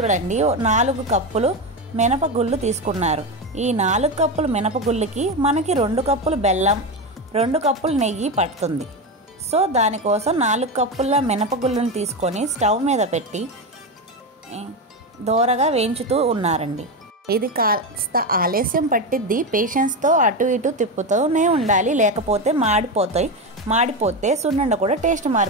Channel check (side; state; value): both; normal; correlation 0.15